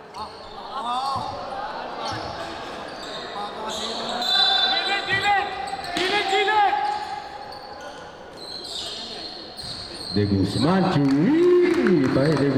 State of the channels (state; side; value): identical; both; correlation 1.00